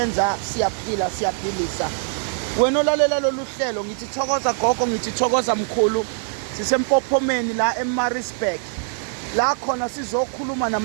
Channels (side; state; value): left; silent; 63 dB below the other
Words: siyaphila, siyaphilisa. Wena olalela lolu hlelo ngithi thokoza gogo, ngithi thokoza mkhulu. Sisempophomeni la eMaritzburg. La khona sizokhuluma